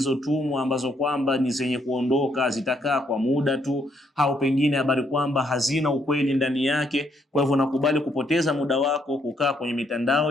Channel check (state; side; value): normal; both; correlation 0.72